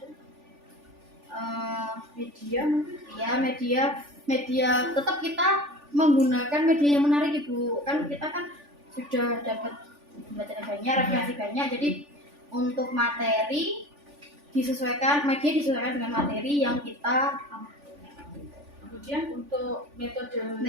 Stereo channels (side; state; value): left; late; 3.4 ms